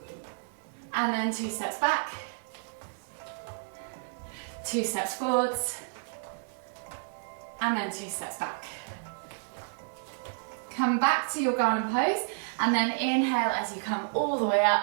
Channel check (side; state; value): left; silent; digital silence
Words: and then 2 steps back, 2 steps forwards, and then 2 steps back. Come back to your garland pose, and then inhale as you come all the way